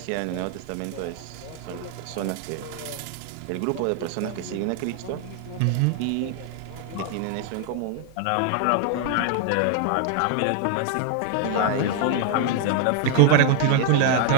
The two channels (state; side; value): different; both; correlation 0.00